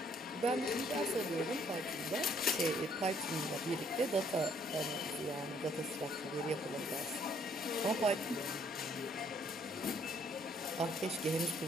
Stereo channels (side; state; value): both; normal; correlation 0.65